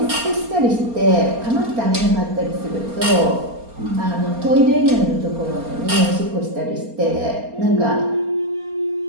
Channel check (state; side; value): late; left; 4.3 ms